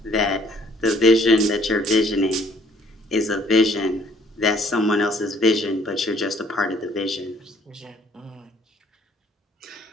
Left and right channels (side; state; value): both; normal; correlation 0.61